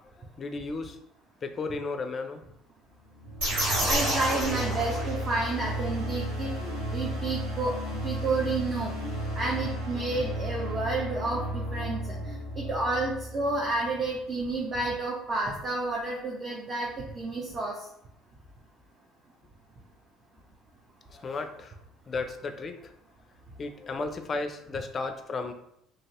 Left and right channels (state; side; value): normal; both; correlation 0.62